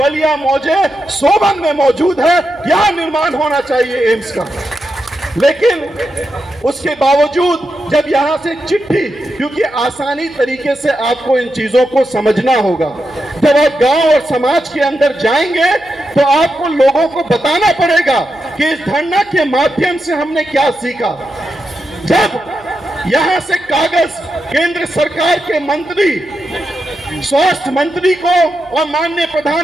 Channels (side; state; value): right; noise; hum, 28 dB below the sound